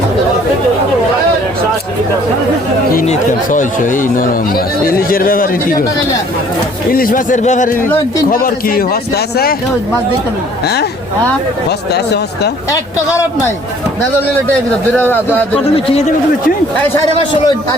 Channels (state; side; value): normal; both; correlation 0.57